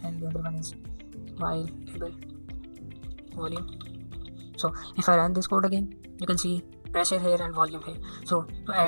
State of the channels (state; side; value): inverted; both; correlation -1.00